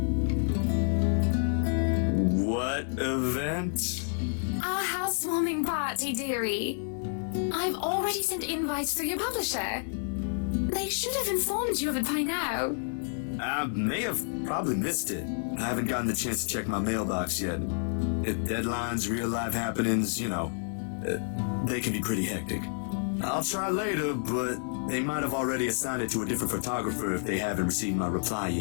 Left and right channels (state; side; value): silent; right; digital silence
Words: Event? Our housewarming party, dearie. I've already sent invites through your publisher. They should have informed you of it by now. I may have probably missed it. I haven't gotten the chance to check my mailbox yet. Deadlines, real life happenings, you know, they can be pretty hectic. I'll try later, but they might have already assigned it to a different photographer if they haven't received my reply